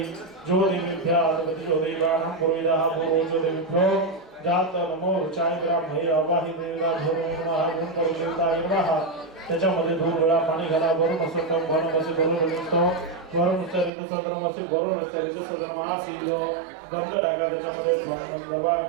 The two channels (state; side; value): drops out; left; at 13.9 s